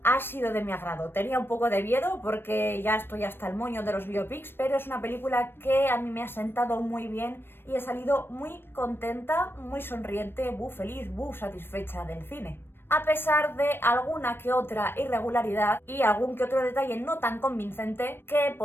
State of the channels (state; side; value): late; right; 0.10 ms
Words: ha sido de mi agrado. Tenía un poco de miedo porque ya estoy hasta el moño de los biopics, pero es una película que a mí me ha sentado muy bien y he salido muy contenta, muy sonriente, feliz, satisfecha del cine. A pesar de alguna que otra irregularidad y algún que otro detalle no tan convincente que